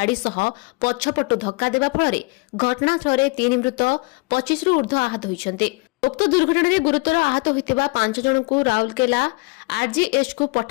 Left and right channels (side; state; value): right; quieter; 26.7 dB